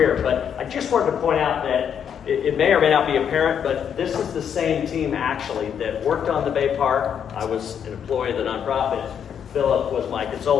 but I just wanted to point out that it may or may not be apparent, but this is the same team actually that worked on the Bay Park. I was an employee of the nonprofit. Philip was my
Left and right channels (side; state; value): right; quieter; 8.2 dB